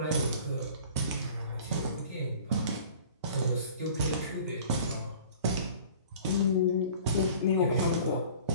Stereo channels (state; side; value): inverted; both; correlation -0.46